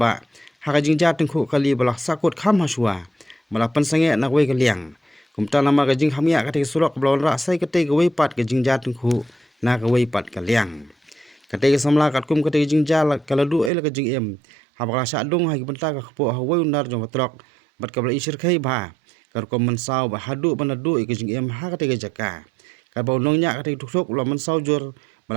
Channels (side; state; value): left; drops out; at 13.7 s